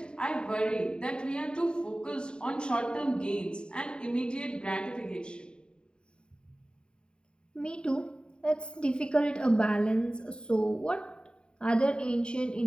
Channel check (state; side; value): late; right; 0.050 ms